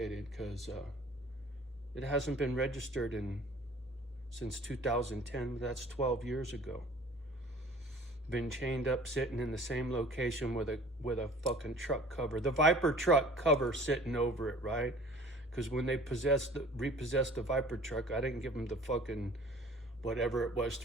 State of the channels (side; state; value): both; normal; correlation 0.48